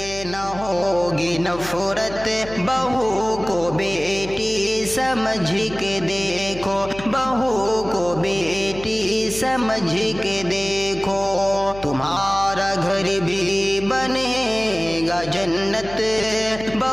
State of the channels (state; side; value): noise; left; hum, 14 dB below the sound